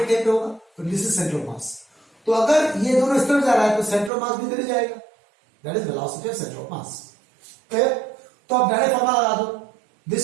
कहीं पे होगा, तो this is centre of mass. तो अगर ये दोनों इस तरफ जा रहा है तो सेंटर ऑफ मास भी इधर ही जाएगा, that is velocity of centre of mass. Clear? तो अब डायरेक्ट फॉर्मूला लगा दो। This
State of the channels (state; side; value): drops out; left; at 4.1 s